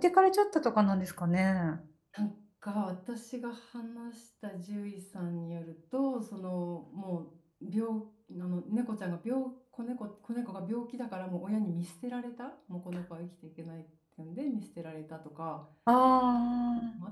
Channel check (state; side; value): identical; both; correlation 1.00